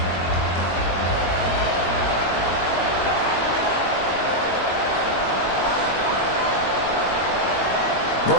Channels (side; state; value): right; late; 22 ms